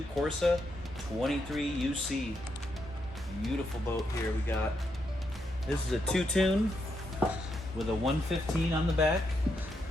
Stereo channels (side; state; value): both; normal; correlation 0.81